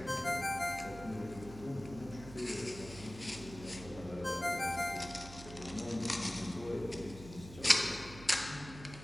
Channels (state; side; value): noise; right; hum, 14 dB below the sound